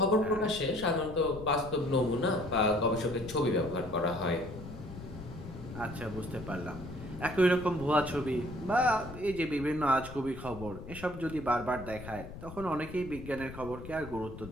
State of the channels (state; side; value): noise; left; rumble, 12 dB below the sound